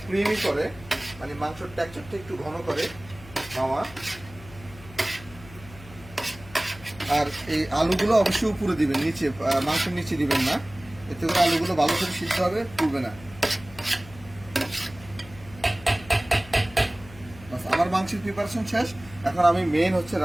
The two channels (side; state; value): left; noise; hum, 19 dB below the sound